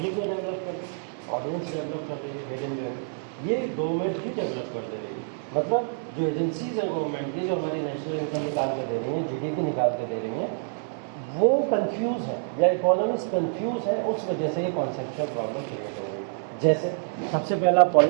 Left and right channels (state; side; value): silent; left; 60 dB below the other